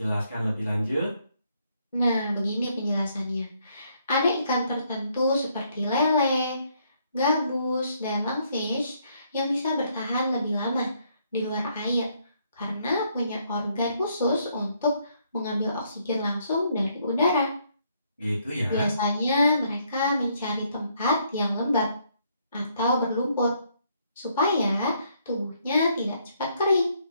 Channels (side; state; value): both; inverted; correlation -0.71